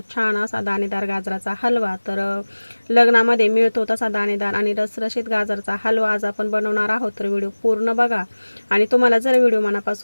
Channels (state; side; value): inverted; both; correlation -1.00